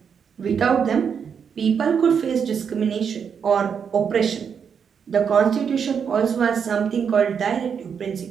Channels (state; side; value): quieter; left; 7.0 dB